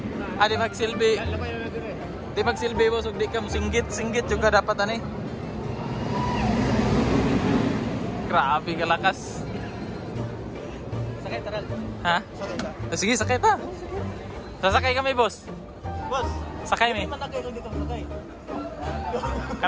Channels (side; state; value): both; identical; correlation 1.00